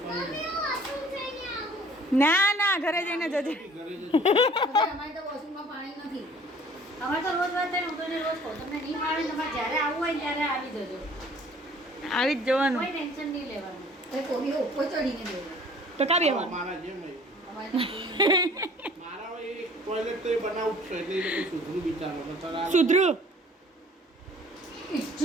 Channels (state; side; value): normal; both; correlation 0.52